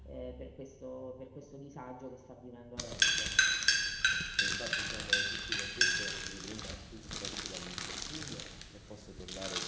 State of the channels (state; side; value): identical; both; correlation 1.00